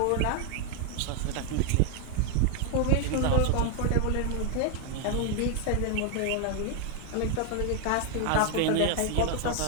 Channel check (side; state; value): both; different; correlation 0.01